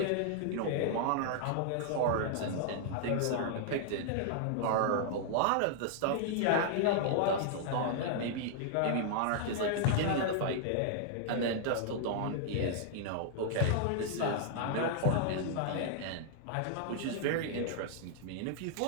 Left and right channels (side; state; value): both; different; correlation -0.01